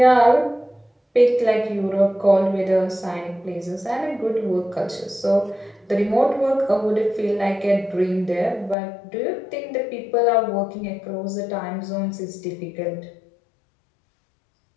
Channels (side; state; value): right; drops out; at 8.8 s